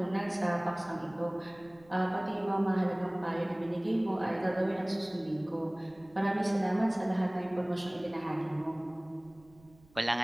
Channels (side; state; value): right; noise; rumble, 27 dB below the sound